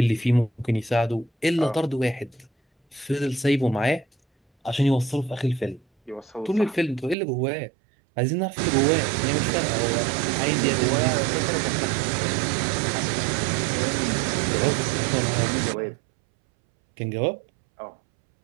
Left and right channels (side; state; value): left; drops out; at 7.2 s